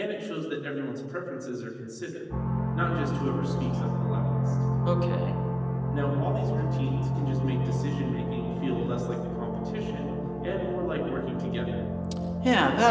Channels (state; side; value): identical; both; correlation 1.00